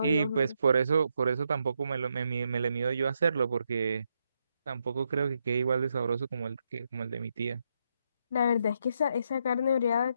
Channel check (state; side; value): inverted; both; correlation -0.79